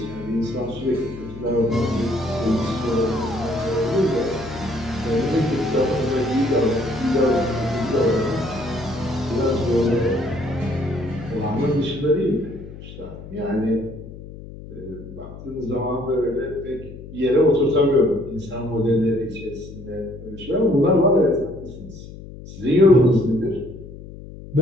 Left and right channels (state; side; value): noise; left; hum, 14 dB below the sound